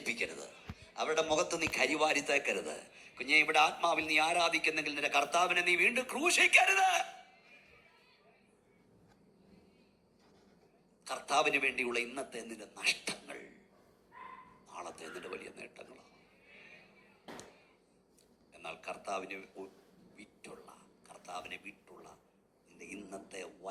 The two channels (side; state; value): both; identical; correlation 1.00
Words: അവരുടെ മുഖത്ത് നീ കരിവാരി തേക്കരുത്. കുഞ്ഞെ, ഇവിടെ ആത്മാവിൽ നീ ആരാധിക്കുന്നെങ്കിൽ നിന്റെ കർത്താവിനെ നീ വീണ്ടും ക്രൂശിക്കരുത്. കർത്താവിന് വേണ്ടിയുള്ള ഇന്നത്തെ നിന്റെ നഷ്ടങ്ങൾ നാളത്തെ നിന്റെ വലിയ നേട്ടങ്ങളാണ്. എന്നാൽ കർത്താവിനെ വിട്ടുള്ള നിന്റെ ഇന്നത്തെ